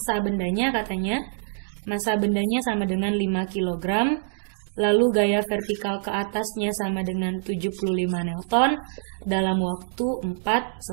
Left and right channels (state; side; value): silent; left; digital silence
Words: bendanya katanya, massa bendanya sama dengan 5 kg, lalu gaya vertikal ke atasnya sama dengan 75 Newton dalam waktu 4